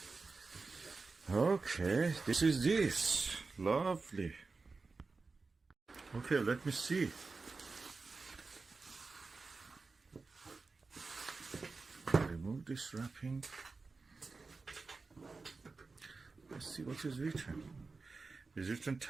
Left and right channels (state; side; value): quieter; left; 4.1 dB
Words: Okay, this is this. Lovely. Okay, let me see. Remove this wrapping. Let's see what is written. It's written